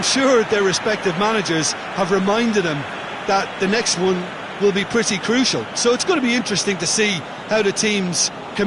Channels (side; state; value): both; identical; correlation 1.00